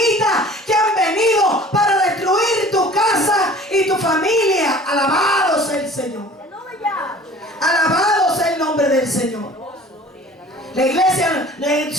que han venido para destruir tu casa y tu familia. Alabado sea el Señor. Aleluya. Alabado sea el nombre del Señor. La iglesia,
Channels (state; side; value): normal; both; correlation 0.46